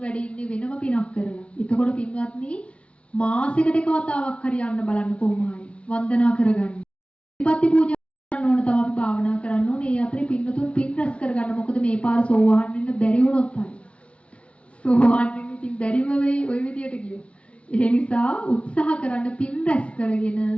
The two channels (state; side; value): late; right; 0.061 ms